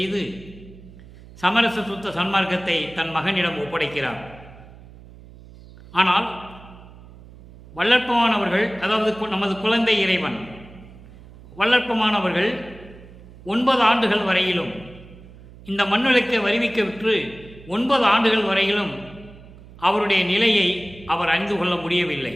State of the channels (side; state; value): right; noise; hum, 20 dB below the sound